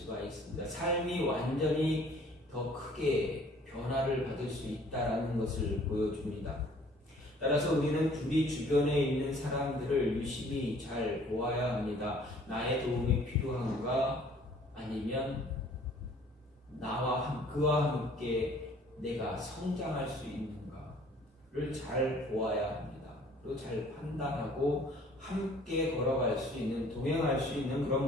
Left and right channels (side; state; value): both; normal; correlation 0.55